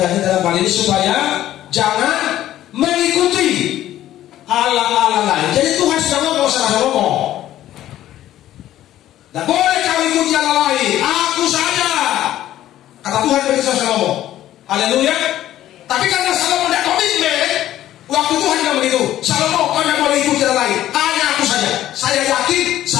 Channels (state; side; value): quieter; right; 13.1 dB